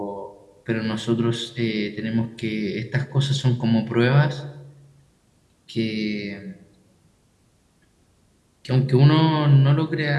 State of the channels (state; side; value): identical; both; correlation 1.00